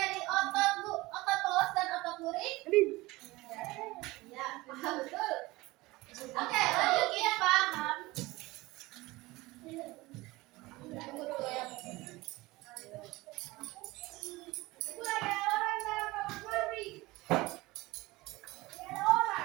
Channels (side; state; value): left; quieter; 20.7 dB